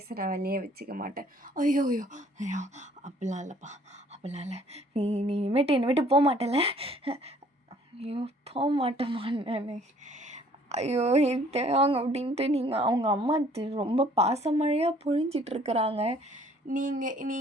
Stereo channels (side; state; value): both; normal; correlation 0.58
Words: வேலையே வச்சுக்க மாட்டேன். ஐயோ ஐயோ ஐயோ அப்படிலாம் இல்லைப்பா, அப்படிலாம் இல்லை. நீ இனிமேட்டு என்னை விட்டு போக மாட்டேல? ஐயோ போக மாட்டேம்மா நான். ஐயோ தேவாங்க அப்படின்ட்டு அவங்க அம்மா ரொம்ப பாசமழையாக பொழிஞ்சிட்ருக்குறாங்க.